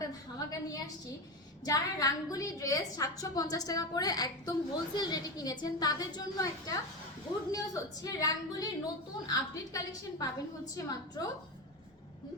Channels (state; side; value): normal; both; correlation 0.18